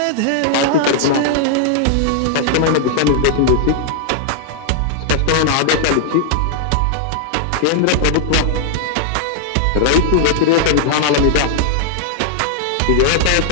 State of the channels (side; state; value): both; different; correlation -0.01